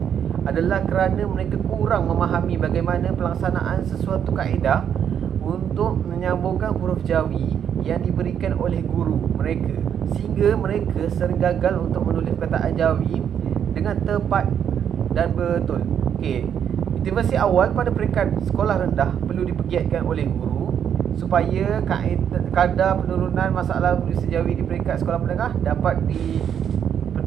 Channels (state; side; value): quieter; left; 8.6 dB